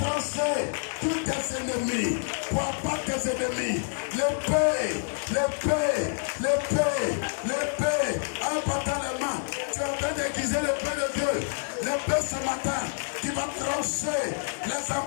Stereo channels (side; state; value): right; silent; digital silence